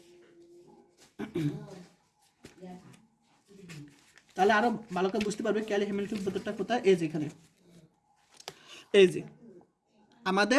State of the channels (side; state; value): both; identical; correlation 1.00